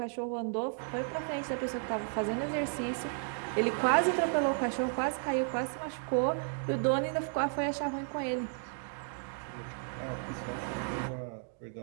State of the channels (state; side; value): silent; left; 55 dB below the other